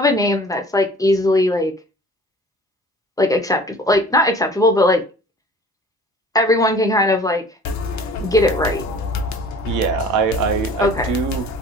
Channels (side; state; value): both; normal; correlation 0.47